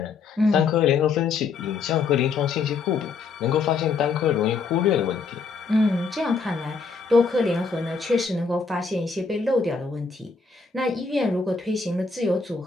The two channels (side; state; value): right; quieter; 4.8 dB